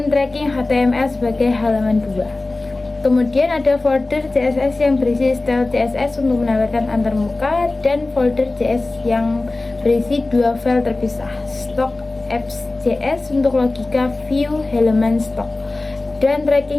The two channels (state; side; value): quieter; right; 3.1 dB